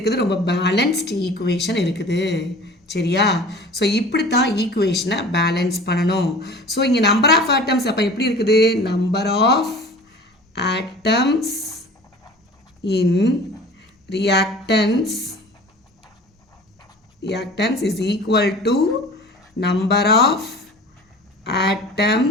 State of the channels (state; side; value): normal; both; correlation 0.42